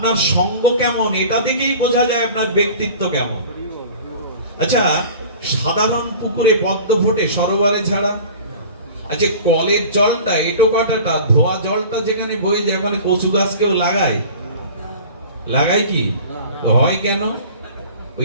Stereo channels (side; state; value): both; inverted; correlation -0.41